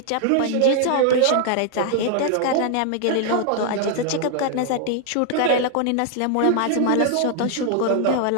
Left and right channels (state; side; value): different; both; correlation 0.00